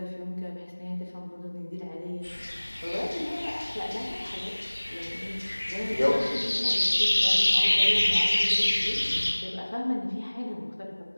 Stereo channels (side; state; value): both; inverted; correlation -1.00